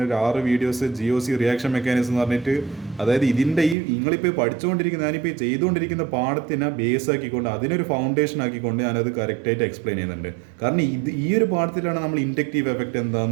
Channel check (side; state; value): left; drops out; at 3.8 s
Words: ഒരു 6 വീഡിയോസ് GOC റിയാക്ഷൻ മെക്കാനിസം എന്ന് പറഞ്ഞിട്ട്, അതായത് ഇതിൻ്റെ നിങ്ങളിപ്പോൾ പഠിച്ചുകൊണ്ടിരിക്കുന്ന ഞാനിപ്പോൾ ചെയ്തുകൊണ്ടിരിക്കുന്ന പാഠത്തിനെ ബേസ് ആക്കിക്കൊണ്ട് അതിനൊരു ഫൗണ്ടേഷൻ ആക്കിക്കൊണ്ട് ഞാനത് കറക്റ്റായിട്ട് എക്സ്പ്ലെയിൻ ചെയ്യുന്നുണ്ട്. കാരണം ഈ ഒരു പാഠത്തിലാണ് നമ്മൾ ഇൻഡക്റ്റീവ് എഫക്റ്റ്